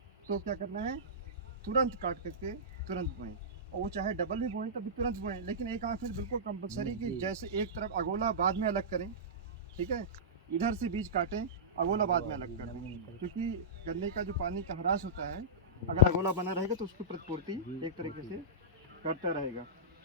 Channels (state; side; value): normal; both; correlation -0.17